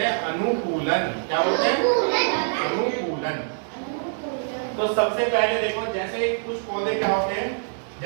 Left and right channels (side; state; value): left; silent; digital silence